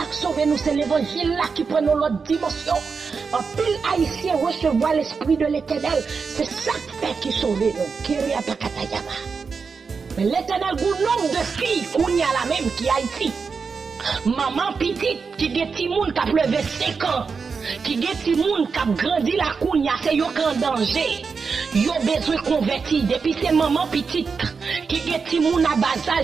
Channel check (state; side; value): quieter; left; 5.2 dB